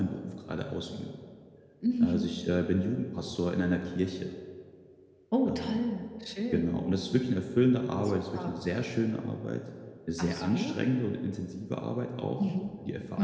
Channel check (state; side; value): identical; both; correlation 1.00